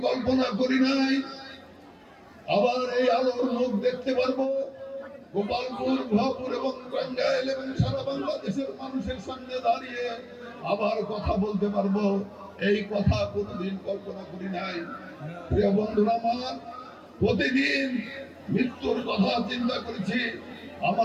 কল্পনা করি নাই আবার এই আলোর মুখ দেখতে পারবো, গোপালপুর, ভরপুর এবং টাঙ্গাইল এবং সারা বাংলাদেশের মানুষের সামনে দাঁড়িয়ে আবার কথা বলতে পারবো, এই কথা কোনোদিন কল্পনা করি নাই। প্রিয় বন্ধুরা আমার, প্রতিদিন মৃত্যুর কথা চিন্তা করেছি।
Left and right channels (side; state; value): both; identical; correlation 1.00